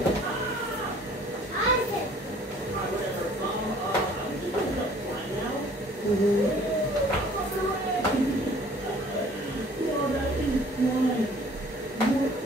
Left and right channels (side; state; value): both; normal; correlation 0.54